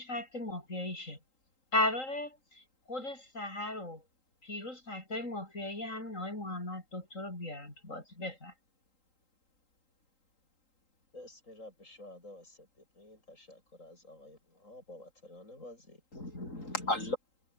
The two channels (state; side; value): late; right; 3.8 ms